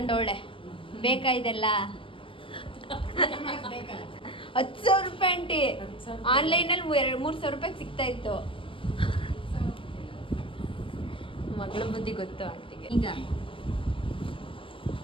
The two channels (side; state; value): right; late; 0.25 ms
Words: ಬೇಕಾ ಇದೆಲ್ಲ? 10,000 ರೂಪಾಯಿ ಆಂಟಿ. ಆನ್ಲೈನಲ್ಲಿ 3,000 ರೂಪಾಯಿಗೆ ಸಿಗ್ತಾ ಇತ್ತು. ಮಗಳ ಬುದ್ಧಿ ಗೊತ್ತು ಆಂಟಿಗೆ. ಈಗ